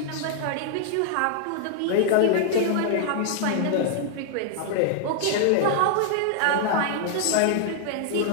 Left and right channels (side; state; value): both; different; correlation 0.00